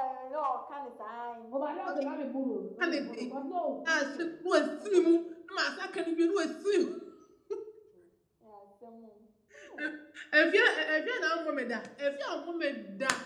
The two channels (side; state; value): both; identical; correlation 1.00